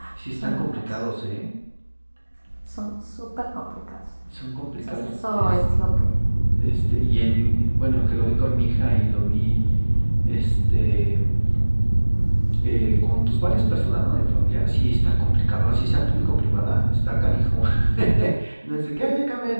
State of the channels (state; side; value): inverted; both; correlation -1.00